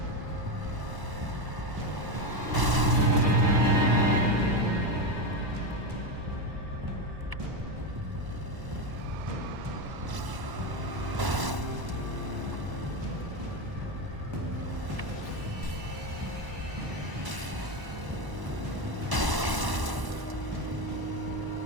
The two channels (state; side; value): late; left; 1.0 ms